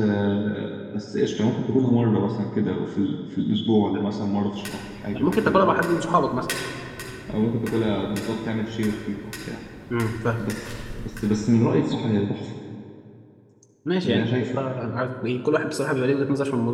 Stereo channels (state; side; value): identical; both; correlation 1.00